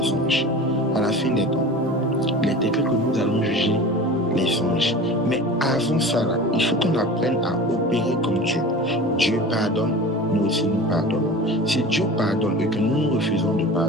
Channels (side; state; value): both; normal; correlation 0.36